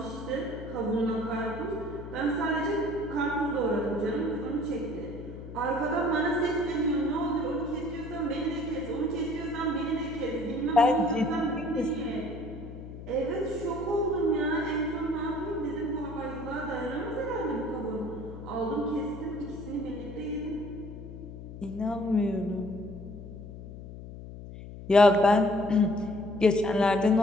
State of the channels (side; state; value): left; noise; hum, 12 dB below the sound